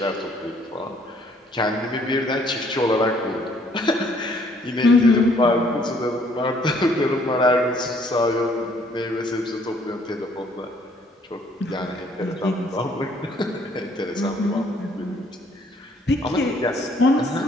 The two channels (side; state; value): both; normal; correlation 0.63